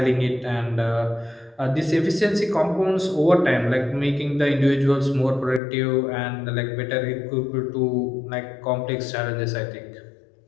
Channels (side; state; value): right; drops out; at 5.6 s